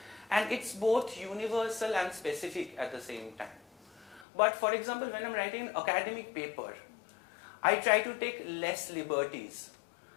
and it's both universal and specific at the same time. But for example, when I'm writing an academic paper, I try to take less liberties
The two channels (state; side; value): drops out; right; at 4.2 s